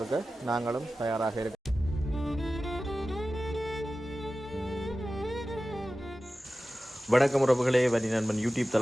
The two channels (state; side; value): normal; both; correlation 0.95